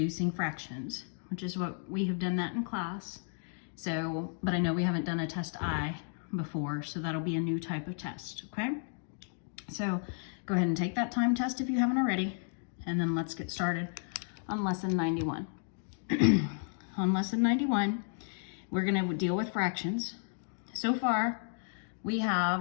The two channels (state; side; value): silent; right; 56 dB below the other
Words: fractions, which is what we have done that in class. So, but I know we haven't done a test I before, so that'll be a new type of test, okay? So go ahead and take that time test if you haven't already, and then let's get started on lesson 91. On lesson 91, we're gonna deal with fractions. So far, we